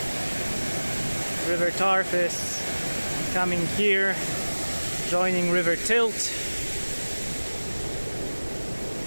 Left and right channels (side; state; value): both; inverted; correlation -1.00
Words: River Tarf is coming here, joining River Tilt